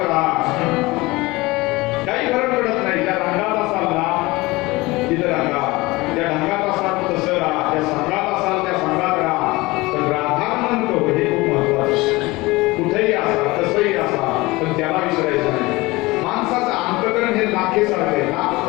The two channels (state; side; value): quieter; right; 21.6 dB